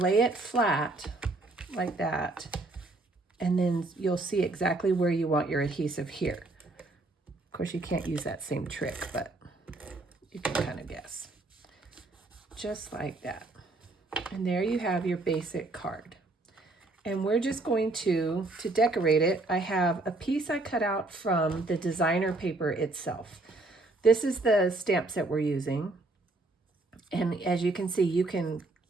it flat like that, and then you'll see exactly where you want your adhesive here. Of course, you can't use that same trick, but you can kind of guess. Just like that. And there you have your basic card. And we're just going to decorate it, I have a piece I cut out from the designer paper itself. This is the stamp set we're using. And as you can see, you can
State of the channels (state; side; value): quieter; left; 3.0 dB